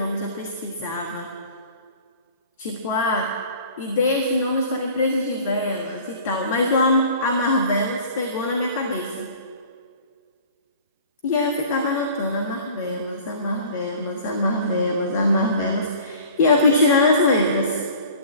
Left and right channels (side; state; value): both; inverted; correlation -0.46